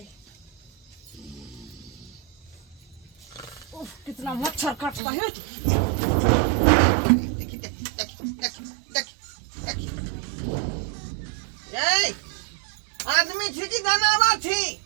उफ, कितना मच्छर काटता है। देखी देखी देखी देखी देखी देखी ये आदमी थी कि जनावर थी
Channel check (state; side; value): drops out; left; at 5.0 s